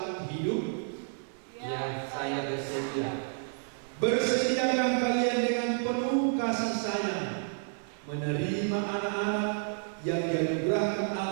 hidup? Ya, saya bersedia. Bersediakah kalian dengan penuh kasih sayang menerima anak-anak yang dianugerahkan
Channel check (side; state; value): left; silent; 58 dB below the other